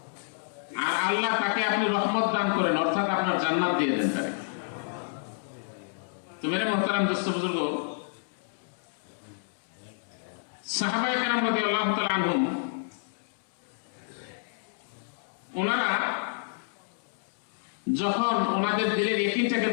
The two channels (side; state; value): right; silent; digital silence